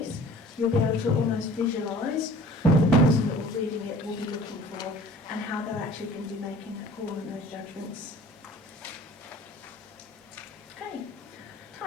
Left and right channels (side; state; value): both; normal; correlation 0.48